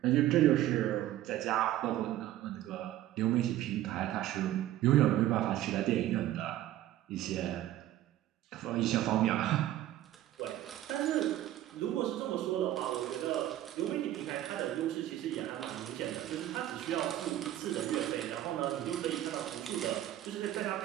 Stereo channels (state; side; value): quieter; left; 13.5 dB